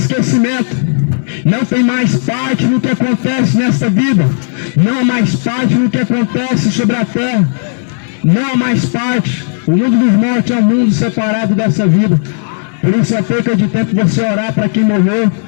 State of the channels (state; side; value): silent; right; digital silence